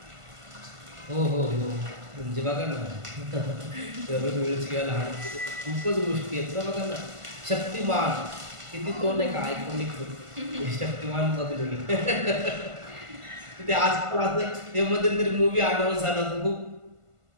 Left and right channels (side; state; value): left; late; 1.5 ms